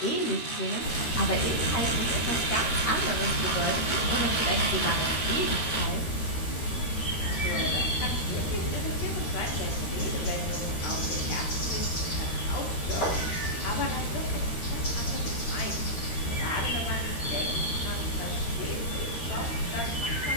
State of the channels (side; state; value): right; late; 13 ms